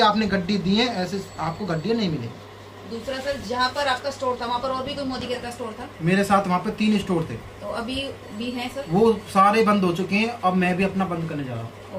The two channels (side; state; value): both; identical; correlation 1.00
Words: आपने गड्डी दी है ऐसे आपको गड्डियाँ नहीं मिलेंगी। दूसरा सर, जहाँ पर आपका स्टोर था वहाँ पर और भी कोई मोदी केयर का स्टोर था? मेरे साथ वहाँ पे 3 स्टोर थे। तो अभी भी हैं सर? वो सारे बंद हो चुके हैं, अब मैं भी अपना बंद करने जा रहा हूँ।